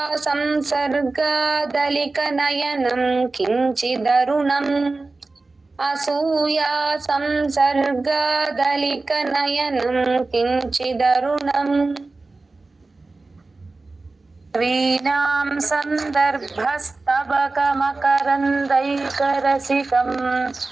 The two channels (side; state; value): left; quieter; 3.5 dB